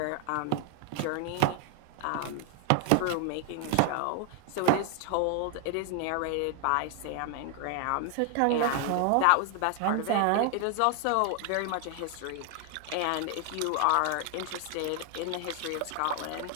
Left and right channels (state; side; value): different; both; correlation 0.00